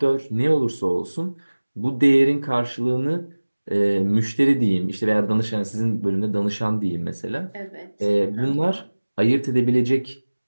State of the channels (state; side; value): inverted; both; correlation -1.00